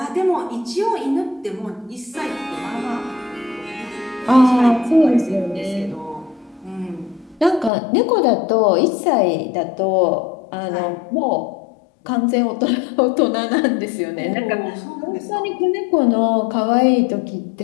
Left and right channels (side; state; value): right; drops out; at 7.7 s